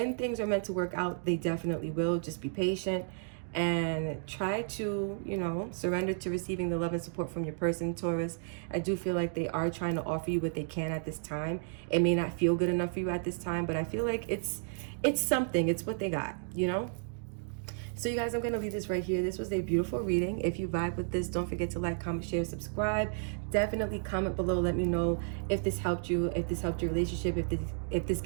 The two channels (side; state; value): left; silent; digital silence